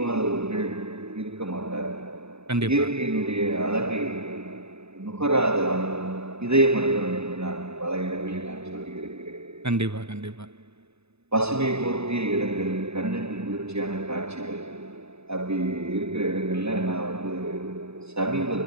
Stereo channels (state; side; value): late; left; 0.80 ms